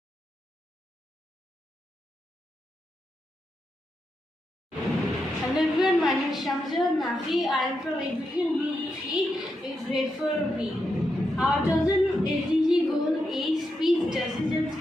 Hello everyone, my name is Shamsir Nafi. I am from Exhibition Group 3 in Grade 4B. Our chosen SDG goal is peace, justice and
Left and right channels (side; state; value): both; normal; correlation 0.85